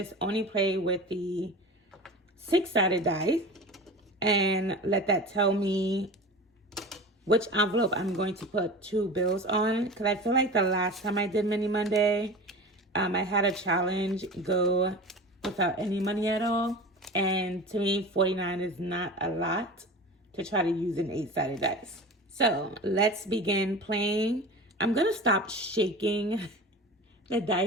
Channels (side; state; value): both; normal; correlation 0.33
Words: only play with the 6-sided die and let that tell me which envelope I'm going to put 2 bills on. Because I feel like the last time I did Mini Monday, I had a challenge go without any money at all. And to me, 49 is not a lot to try to use an 8-sided dice. So let's begin playing. I'm going to stop shaking the